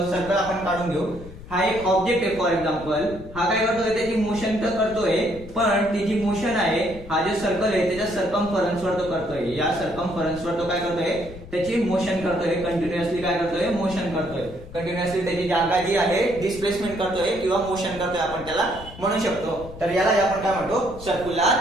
सर्कल आपण काढून घेऊ. हा एक ऑब्जेक्ट आहे. फॉर एक्झाम्पल हा काय करतोय, त्याची मोशन तर करतोय पण ती जी मोशन आहे, हा जे सर्कल आहे त्याच्या सर्कम्फरन्स वर तो करतोय. या सर्कम्फरन्स वर तो काय करतोय, त्याची मोशन करतोय. कंटिन्युअसली काय करतोय, मोशन करतोय. कंटिन्युअसली त्याची जागा जी आहे डिस्प्लेसमेंट करतोय किंवा मोशन करतोय, आपण त्याला म्हणू शकतो. तर याला आपण काय म्हणतो,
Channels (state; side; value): noise; left; rumble, 15 dB below the sound